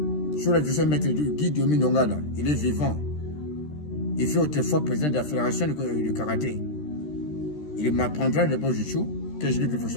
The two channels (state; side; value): late; right; 13 ms